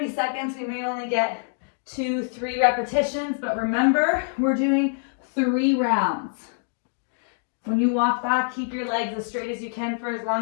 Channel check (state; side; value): silent; right; digital silence